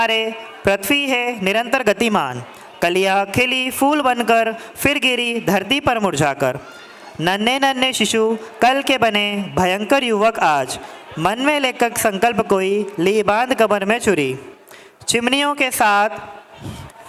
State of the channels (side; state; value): both; identical; correlation 1.00